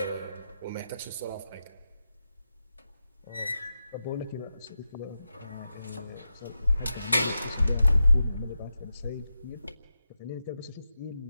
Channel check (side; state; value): both; inverted; correlation -0.90